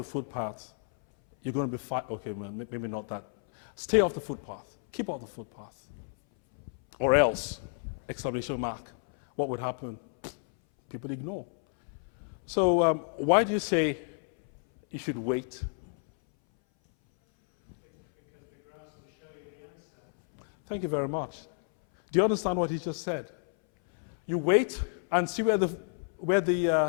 footpath, you're going to be fired. Okay, well, maybe not that. Stay off the footpath. Keep off the footpath. Or else, exclamation mark. What would happen? People ignore. So why do you say you should wait? Because the grass will show you the answer. Thank you very much. Do you understand what he just said? You wait and see where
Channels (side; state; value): right; silent; 58 dB below the other